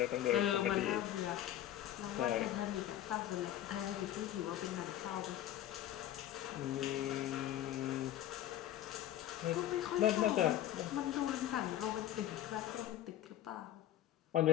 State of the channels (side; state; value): right; quieter; 12.4 dB